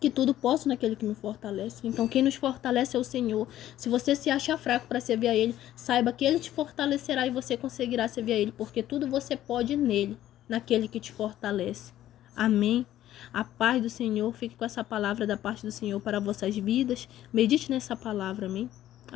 tudo posso naquele que me fortalece. Então, quem nos fortalece é o Senhor. Se você se acha fraco para servir a Ele, saiba que Ele te fortalecerá e você conseguirá servir a Ele, porque tudo você pode nele, naquele que te fortalece. Amém? A paz do Senhor, fique com essa palavra da parte do Senhor para vossas vidas. Medite nessa palavra, amém?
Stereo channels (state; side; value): quieter; right; 13.0 dB